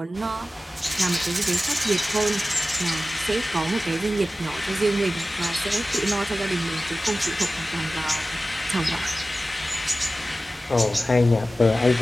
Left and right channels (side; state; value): both; normal; correlation 0.96